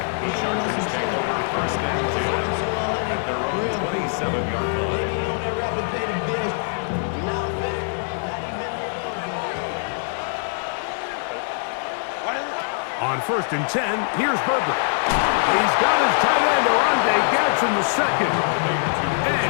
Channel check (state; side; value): silent; right; 63 dB below the other